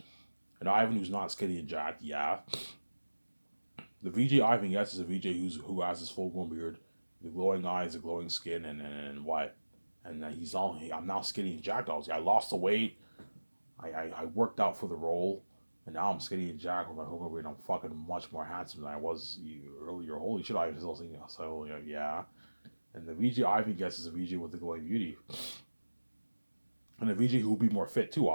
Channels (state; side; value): inverted; both; correlation -1.00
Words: and Ivan who's not skinny and jacked, yeah. The VJ Ivan gets is a VJ who has his full grown beard, the glowing eyes, the glowing skin, and what? And I'm now skinny and jacked. I lost the weight. I worked out for the role, and now I'm skinny and jacked with my whole grown beard. I'm fucking much more handsome than I was earlier. Holy shit, I was still thinking. So yeah. And the VJ Ivan gets is a VJ with the glowing beauty. And the VJ who will be more fit too,